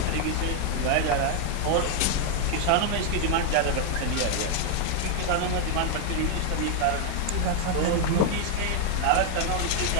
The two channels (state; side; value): different; both; correlation 0.00